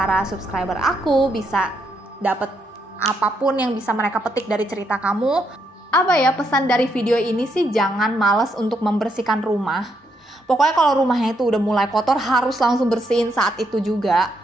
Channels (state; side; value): normal; both; correlation 0.77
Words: subscriber aku, bisa dapet apapun yang bisa mereka petik dari cerita kamu. Apa ya, pesan dari video ini sih, jangan males untuk membersihkan rumah. Pokoknya kalau rumahnya itu udah mulai kotor, harus langsung bersihin saat itu juga.